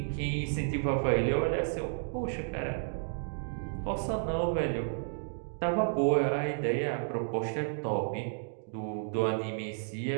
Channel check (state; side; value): silent; left; digital silence